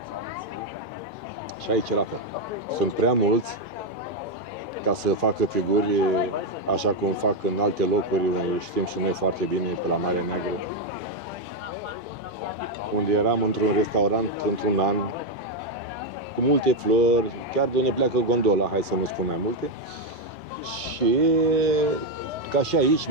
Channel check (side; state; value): both; normal; correlation 0.03